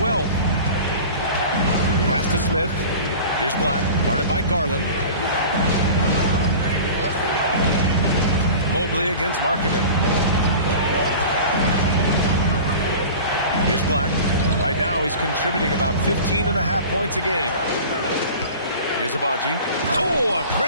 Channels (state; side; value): inverted; both; correlation -0.38